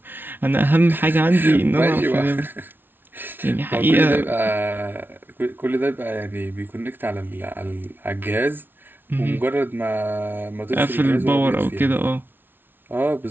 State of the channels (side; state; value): left; late; 0.099 ms